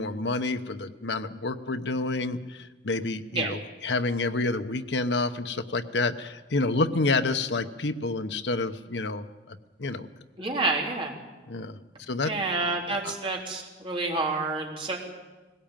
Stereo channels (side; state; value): both; normal; correlation 0.21